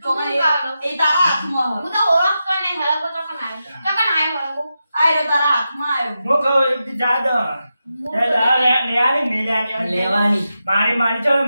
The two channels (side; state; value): both; inverted; correlation -0.89